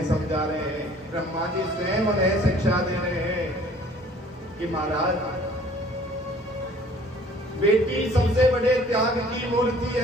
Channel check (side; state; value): both; normal; correlation 0.53